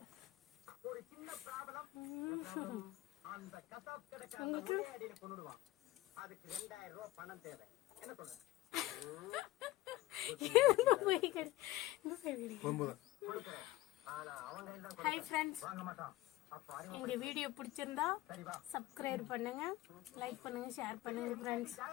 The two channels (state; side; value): quieter; right; 17.3 dB